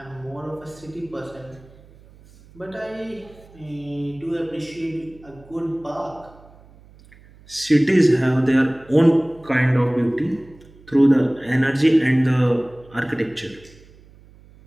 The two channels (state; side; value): noise; right; hum, 25 dB below the sound